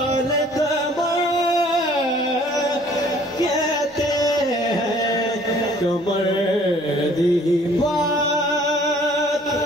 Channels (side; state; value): both; normal; correlation 0.56